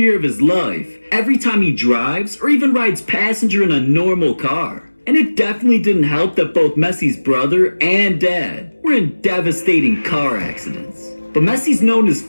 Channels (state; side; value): inverted; both; correlation -1.00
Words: of his life every time he drives or even rides passenger in a normal car. And it definitely didn't help that both Messi's brother and dad were in devastating car accidents. But Messi's known his